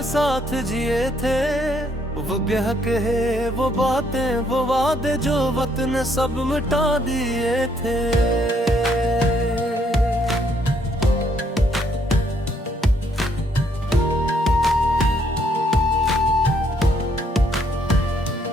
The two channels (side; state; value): both; normal; correlation 0.70